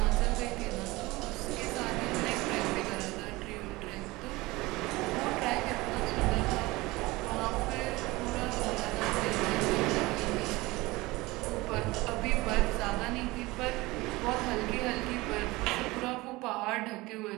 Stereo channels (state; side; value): quieter; left; 21.2 dB